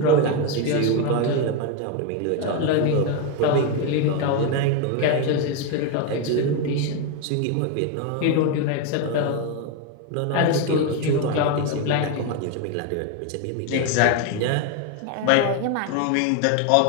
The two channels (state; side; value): different; both; correlation 0.02